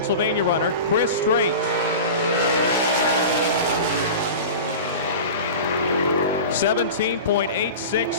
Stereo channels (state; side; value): inverted; both; correlation -0.32